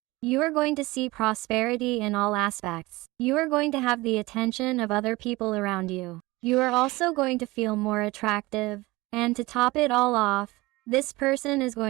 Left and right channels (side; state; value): left; quieter; 21.2 dB